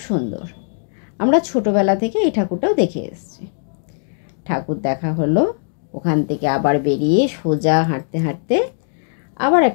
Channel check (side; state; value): right; silent; digital silence